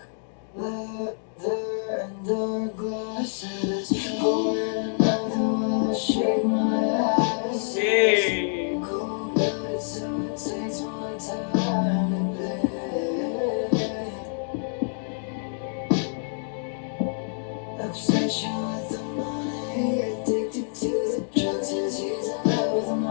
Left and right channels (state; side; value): silent; right; digital silence